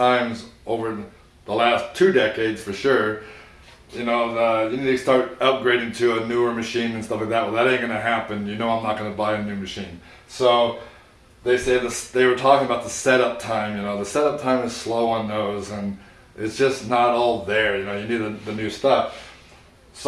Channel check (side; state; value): both; identical; correlation 1.00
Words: over the last 2 decades for sure, you need to start upgrading to a newer machine and stuff like that. Well, that ain't gonna happen. I'm not gonna buy a new machine. So they were talking about the setup time. The setup time is slow on those, and it's just not all there. You need the new stuff.